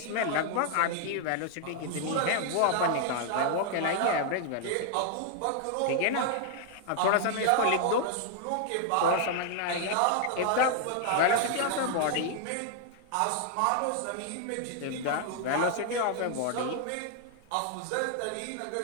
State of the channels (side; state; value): both; different; correlation 0.00